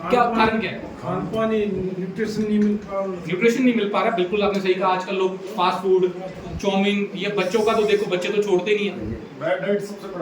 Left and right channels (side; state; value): both; identical; correlation 1.00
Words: क्या कारण क्या है? खान पान, न्यूट्रिशन नहीं मिल पा रहा। न्यूट्रिशन नहीं मिल पा रहा, बिल्कुल आपने सही कहा। आजकल लोग फास्ट फूड, चाउमीन, ये बच्चों का तो देखो, बच्चे तो छोड़ते नहीं है, बैड डाइट सबसे